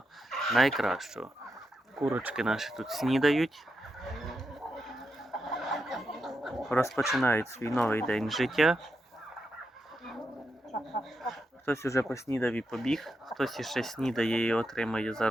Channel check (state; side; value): normal; both; correlation 0.86